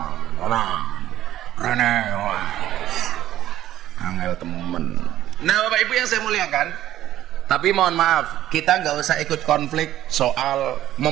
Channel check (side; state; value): left; quieter; 13.0 dB